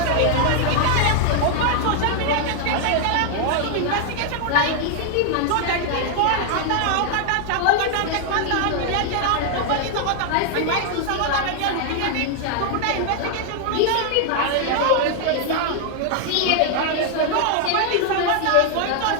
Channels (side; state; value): both; different; correlation 0.00